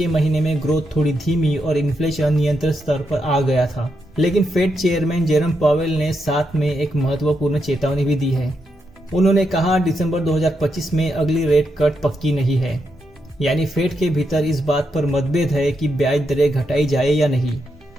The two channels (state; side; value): normal; both; correlation 0.82